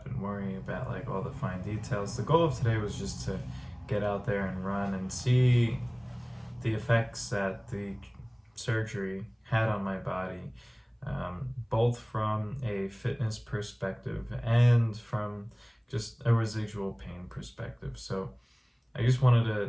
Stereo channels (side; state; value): both; identical; correlation 1.00